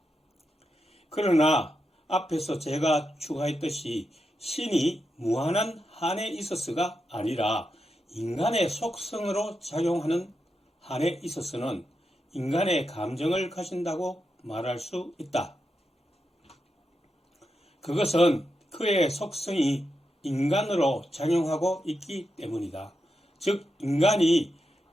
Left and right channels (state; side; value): normal; both; correlation 0.86